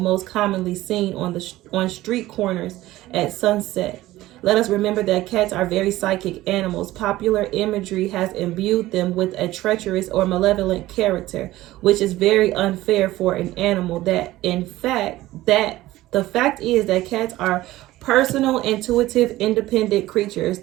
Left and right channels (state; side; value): quieter; left; 16.6 dB